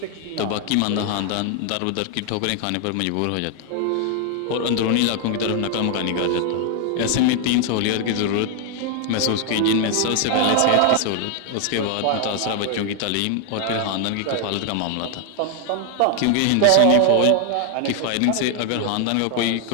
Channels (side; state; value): both; different; correlation 0.00